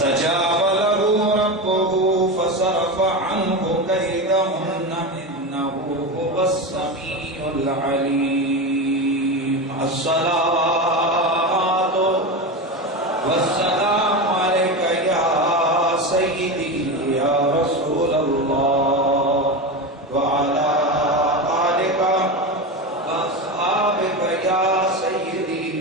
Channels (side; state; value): both; normal; correlation 0.20